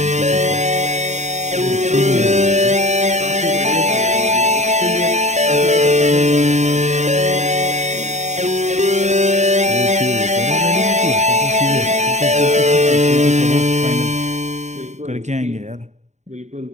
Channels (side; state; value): left; late; 0.34 ms